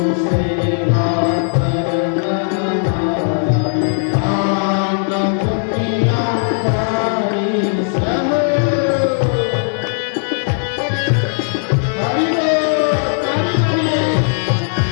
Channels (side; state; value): right; silent; 61 dB below the other